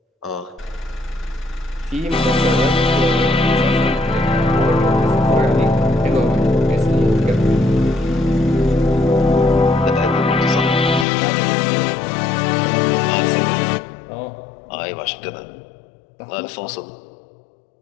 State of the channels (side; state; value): right; drops out; at 11.1 s